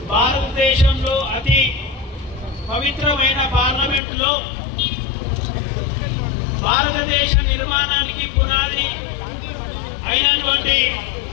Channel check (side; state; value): right; drops out; at 4.0 s